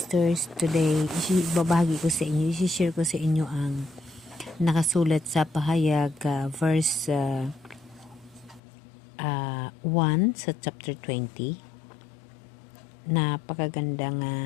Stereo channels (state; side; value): drops out; right; at 8.6 s